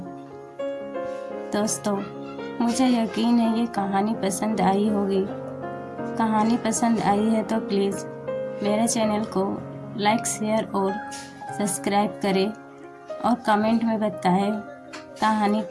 दोस्तों, मुझे यकीन है ये कहानी पसंद आई होगी। कहानी पसंद आई है तो प्लीज़ मेरे चैनल को लाइक, शेयर और सब्सक्राइब करें और कमेंट में बताएं कहानी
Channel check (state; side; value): identical; both; correlation 1.00